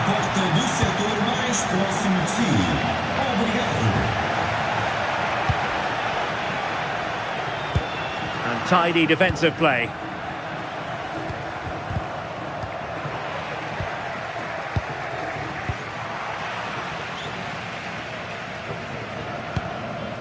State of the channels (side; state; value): both; identical; correlation 1.00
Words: And tidy defensive play.